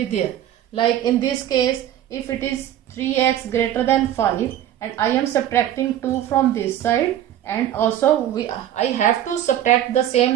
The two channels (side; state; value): left; quieter; 11.7 dB